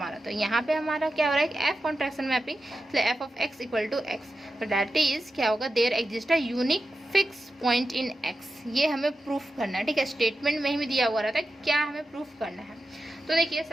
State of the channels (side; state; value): both; normal; correlation 0.91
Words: तो यहाँ पे हमारा क्या हो रहा है कि f कॉन्ट्रैक्शन मैपिंग, इसलिए f of x equal to x. तो दैट इज क्या होगा, there exist a unique fix point in x। ये हमें प्रूफ करना है, ठीक है। स्टेटमेंट में ही दिया हुआ रहता है क्या हमें प्रूफ करना है। तो देखिए